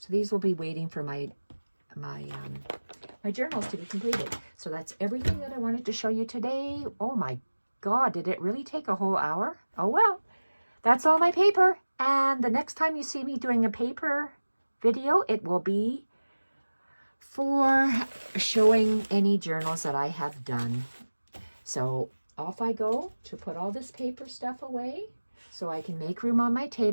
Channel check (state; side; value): inverted; both; correlation -1.00